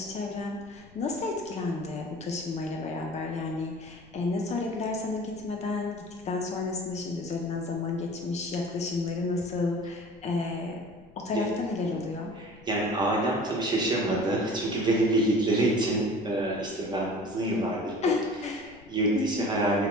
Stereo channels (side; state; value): left; noise; rumble, 25 dB below the sound